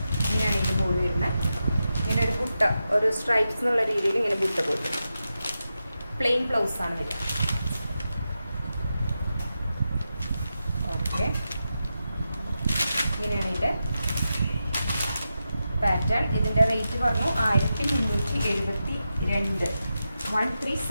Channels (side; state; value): both; inverted; correlation -0.90